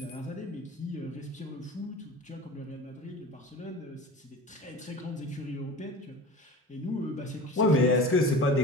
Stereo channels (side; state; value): both; normal; correlation 0.35